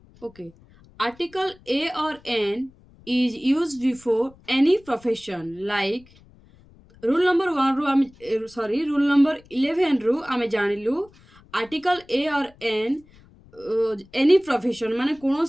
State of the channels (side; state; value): left; noise; rumble, 26 dB below the sound